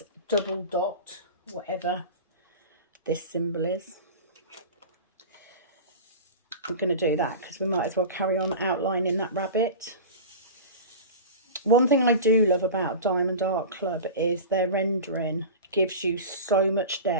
double dot, whatever this symbol is. I'm going to do that because we might as well carry on outlining that rabbit. One thing I do love about Diamond Art Club is their rendering gives you so much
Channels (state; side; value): inverted; both; correlation -0.32